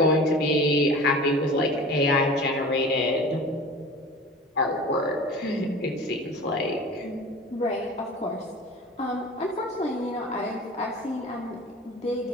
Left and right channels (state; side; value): normal; both; correlation 0.38